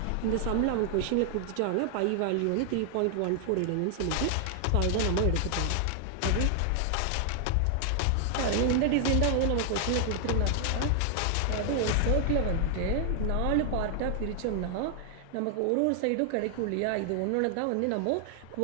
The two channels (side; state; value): both; different; correlation 0.00